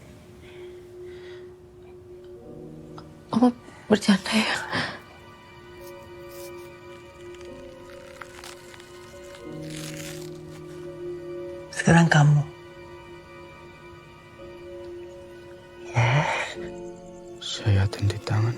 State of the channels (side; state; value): both; identical; correlation 1.00